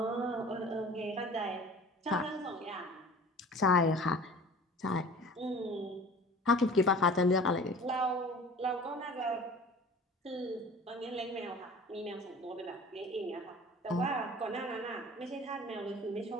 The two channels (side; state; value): both; normal; correlation 0.43